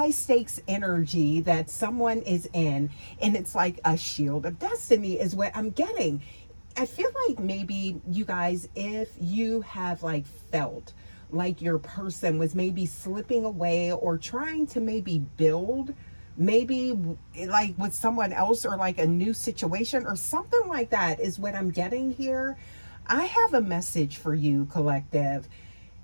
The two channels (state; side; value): inverted; both; correlation -1.00